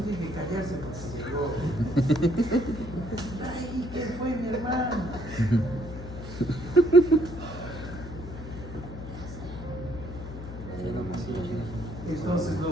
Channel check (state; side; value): noise; left; hum, 10 dB below the sound